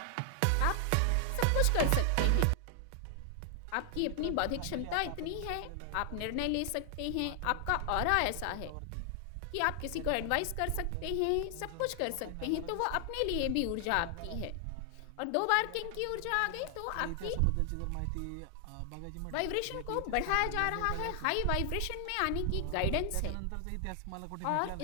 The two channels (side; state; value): both; different; correlation 0.00